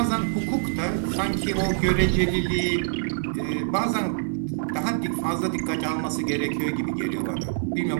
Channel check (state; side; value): silent; left; 58 dB below the other